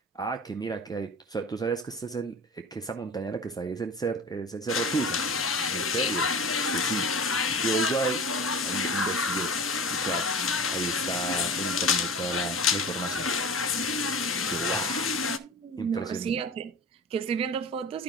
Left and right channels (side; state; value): both; normal; correlation 0.35